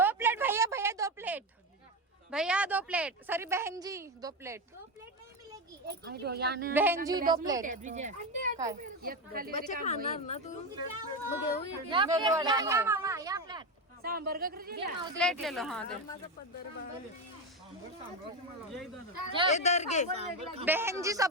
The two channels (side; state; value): both; normal; correlation 0.14